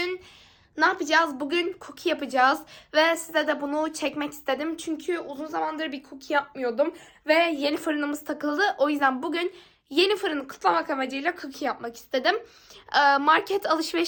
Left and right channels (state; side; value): identical; both; correlation 1.00